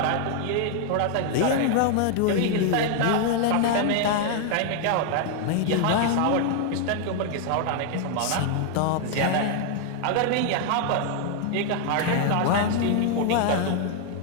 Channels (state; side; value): different; both; correlation 0.00